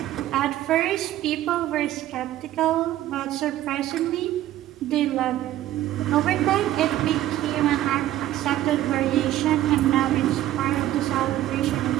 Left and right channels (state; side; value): quieter; left; 13.7 dB